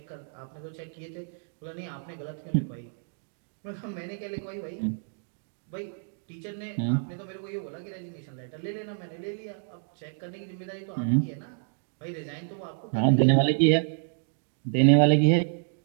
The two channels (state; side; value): silent; left; digital silence